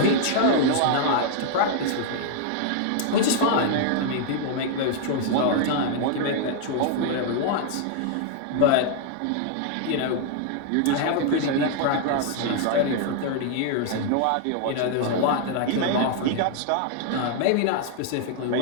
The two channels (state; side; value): different; both; correlation 0.00